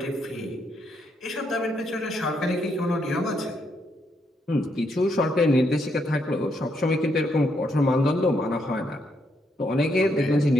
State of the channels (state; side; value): normal; both; correlation 0.76